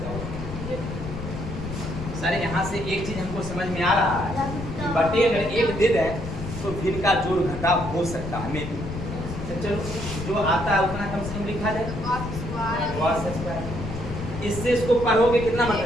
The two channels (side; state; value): left; noise; rumble, 7 dB below the sound